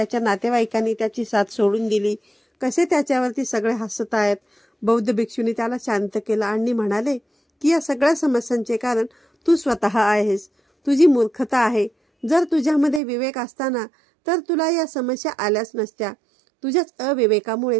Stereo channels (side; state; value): left; drops out; at 13.0 s